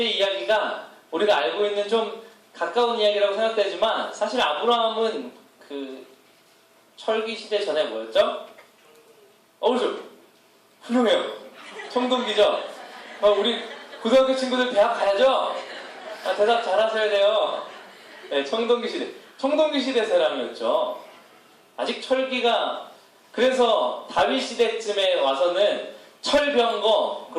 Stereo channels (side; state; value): both; identical; correlation 1.00